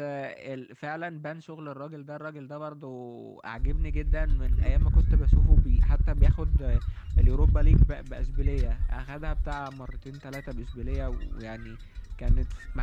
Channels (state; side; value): identical; both; correlation 1.00